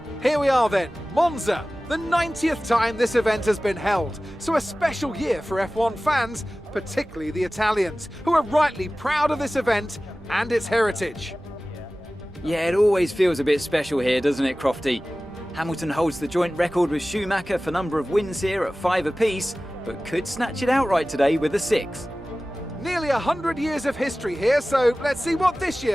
Here we are then, Monza, the 90th time this event has been held, so a special year for F1 fans, particularly the Italians, who are rightly proud of this event and its heritage. Yeah, it always feels a bit special here, doesn't it, Crofty? Hamilton holds the joint record with Schumacher for number of wins here at 5 apiece, but could snatch it outright today with a 6. Nearly 100 years of history here, so let's see what this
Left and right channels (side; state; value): right; noise; rumble, 21 dB below the sound